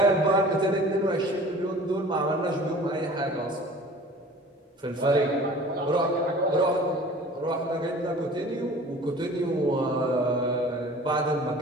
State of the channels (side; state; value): both; normal; correlation 0.44